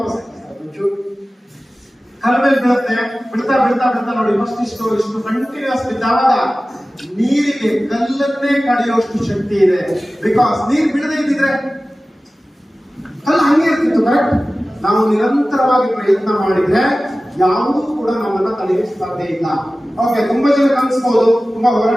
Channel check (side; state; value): both; normal; correlation 0.96